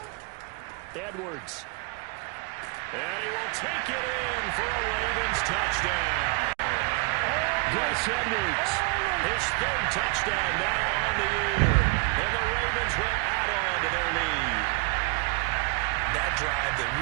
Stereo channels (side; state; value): left; quieter; 28.7 dB